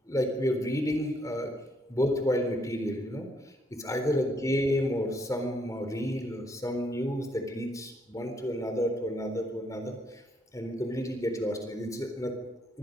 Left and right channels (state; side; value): normal; both; correlation 0.72